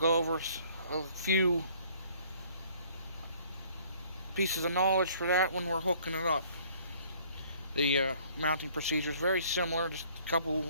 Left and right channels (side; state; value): both; inverted; correlation -0.58